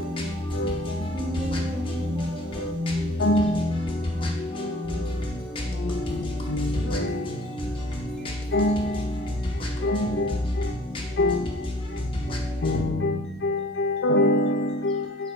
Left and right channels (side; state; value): both; normal; correlation 0.49